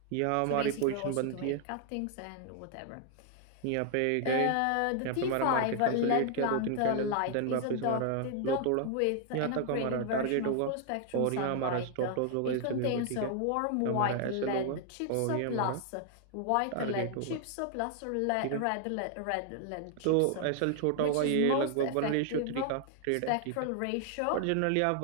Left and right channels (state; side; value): different; both; correlation 0.00